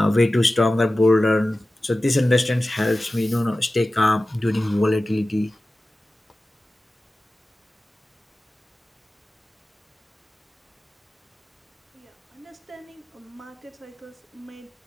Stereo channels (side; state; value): both; normal; correlation 0.96